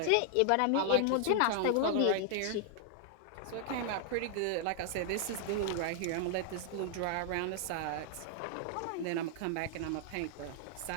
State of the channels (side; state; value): both; different; correlation 0.00